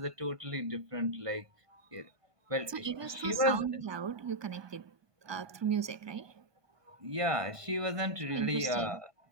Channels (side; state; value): left; late; 1.2 ms